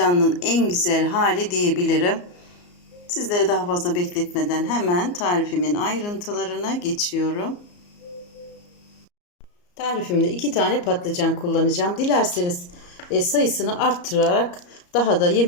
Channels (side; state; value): right; late; 34 ms